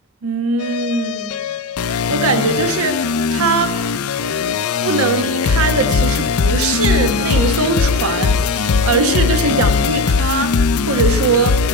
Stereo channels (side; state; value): both; normal; correlation 0.20